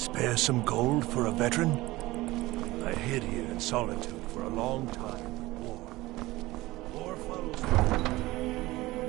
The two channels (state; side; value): quieter; left; 19.1 dB